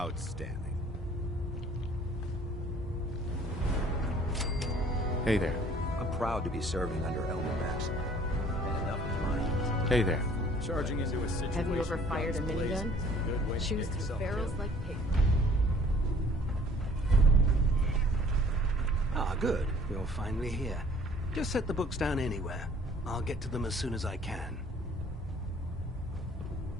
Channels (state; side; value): normal; both; correlation 0.54